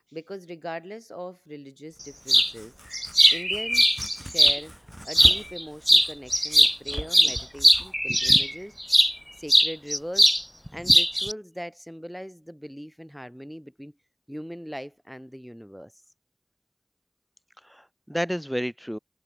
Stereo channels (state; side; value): identical; both; correlation 1.00